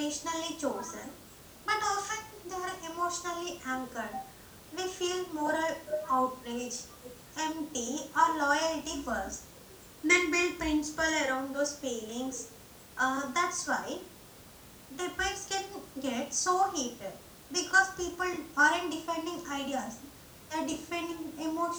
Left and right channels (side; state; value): both; identical; correlation 1.00